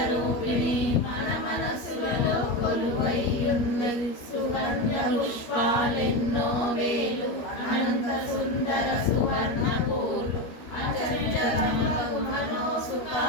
మన మనసులలో కొలువైయున్నది సువర్ణ పుష్పాలెన్నో వేలు అనంత సుందర సువర్ణ పూలు అచంచలమగు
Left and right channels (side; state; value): right; late; 13 ms